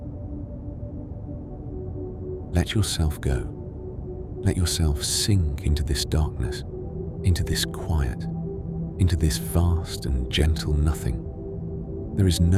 Let yourself go. Let yourself sink into this darkness, into this quiet, into this vast and gentle nothing. There is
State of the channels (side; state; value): both; identical; correlation 1.00